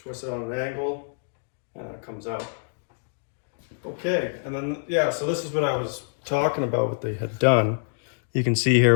it on an angle and it comes out. Okay, and then, yeah, so this is what I was talking about, what they had done. You can see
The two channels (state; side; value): silent; right; digital silence